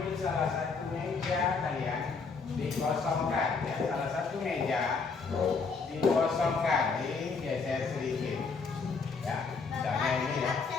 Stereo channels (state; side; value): quieter; right; 4.8 dB